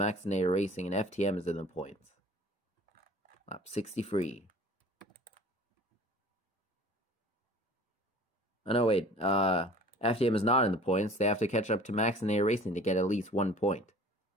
Racing, and FTM is in the points. Lap 63. Oh, no, wait. FTM is not in the points. They have to catch up to Maxinator Racing to get at least 1 point.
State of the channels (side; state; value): both; normal; correlation 0.46